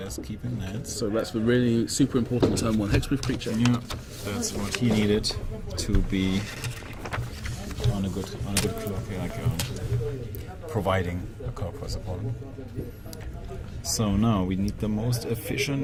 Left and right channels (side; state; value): both; identical; correlation 1.00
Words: keeping that. So that's the really super important turn 1 hexproof creature. Yeah, that's what he needed to be on a good clock, like providing a card for his opponent. So now we need the most